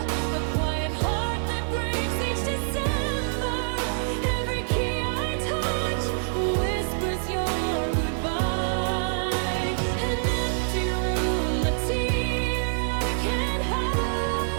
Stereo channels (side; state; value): left; silent; digital silence